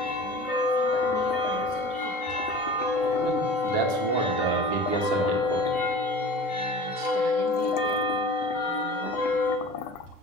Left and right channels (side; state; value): both; normal; correlation 0.39